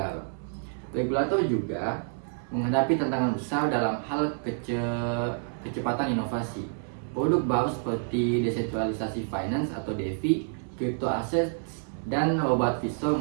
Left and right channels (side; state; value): left; silent; 59 dB below the other